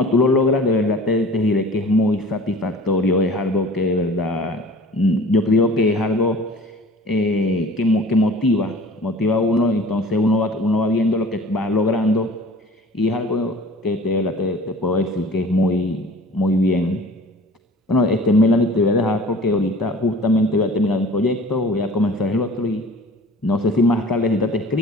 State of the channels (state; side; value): normal; both; correlation 0.44